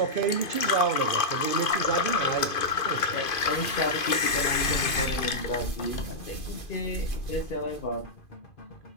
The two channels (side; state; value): right; late; 2.5 ms